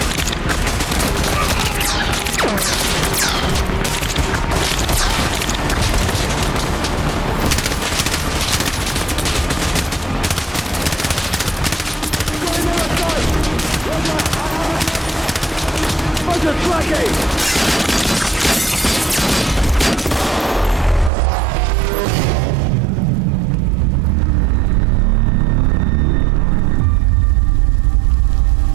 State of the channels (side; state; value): left; drops out; at 21.1 s